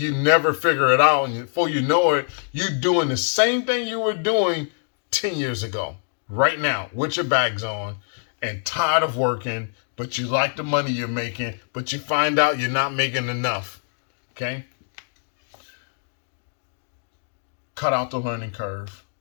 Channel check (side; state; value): right; silent; digital silence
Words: never figure it out. And before you know it, you're doing the same thing you were doing 10 years ago, right now, with your bags on and tired of working, but you like the money you're making, but you find out you're not making enough. Okay? Cut out the learning curve.